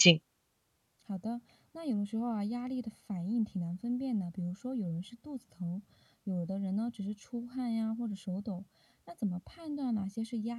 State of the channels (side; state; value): both; identical; correlation 1.00